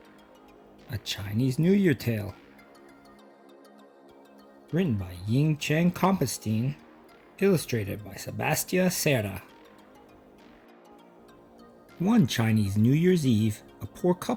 a Chinese New Year tale. Written by Ying Chen Compenstein, illustrated by Sebastia Serra. One Chinese New Year's Eve, a poor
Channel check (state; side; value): identical; both; correlation 1.00